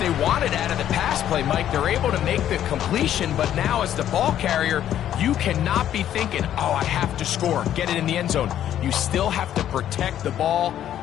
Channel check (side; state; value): right; quieter; 11.0 dB